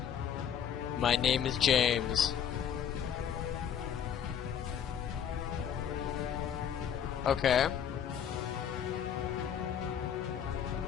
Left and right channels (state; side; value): quieter; right; 8.5 dB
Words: My name is James. Okay.